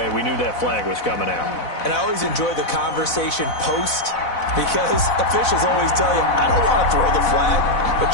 We knew that flag was coming out. And I always enjoy the conversation post, because officials always tell you, I don't want to throw the flag,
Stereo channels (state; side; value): late; right; 4.0 ms